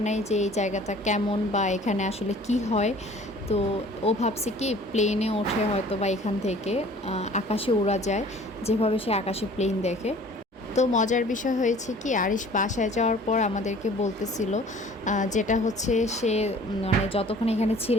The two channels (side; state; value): both; normal; correlation 0.50